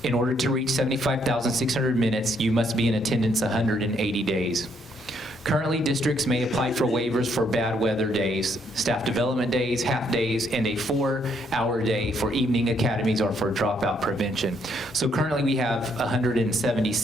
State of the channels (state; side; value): normal; both; correlation 0.71